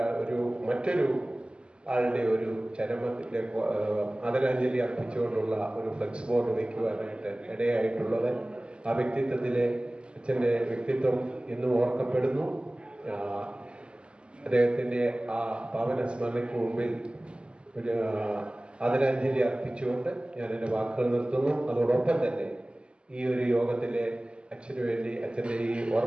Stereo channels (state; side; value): late; left; 0.052 ms